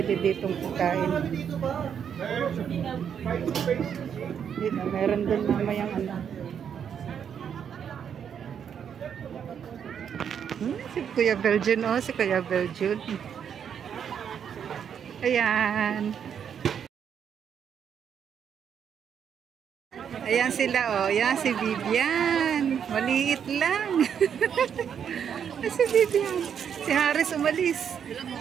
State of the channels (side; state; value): left; quieter; 8.0 dB